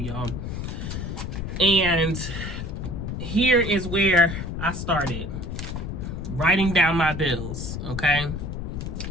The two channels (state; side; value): noise; left; rumble, 5 dB below the sound